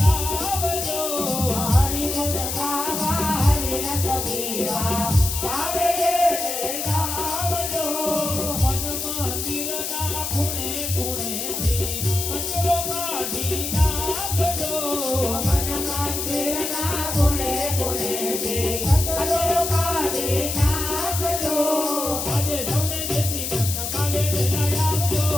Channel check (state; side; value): noise; left; hiss, 3 dB below the sound